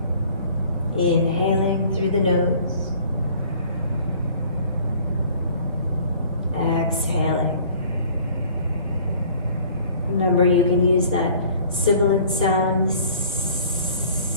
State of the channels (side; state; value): both; inverted; correlation -0.52